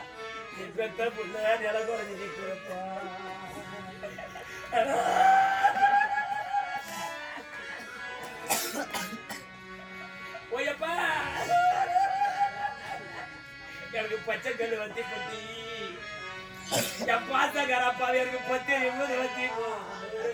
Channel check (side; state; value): both; identical; correlation 1.00